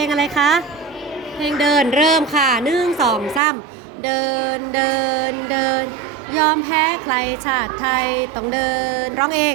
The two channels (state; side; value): drops out; left; at 3.4 s